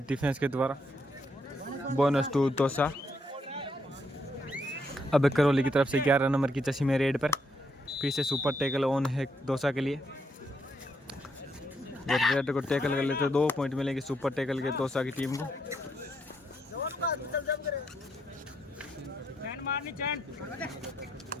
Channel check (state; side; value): normal; both; correlation 0.76